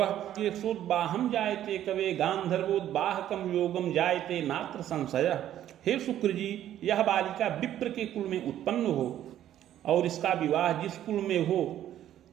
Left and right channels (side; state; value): left; quieter; 11.7 dB